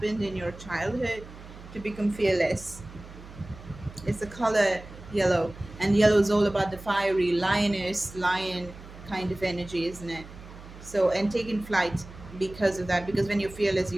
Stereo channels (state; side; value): noise; right; hum, 16 dB below the sound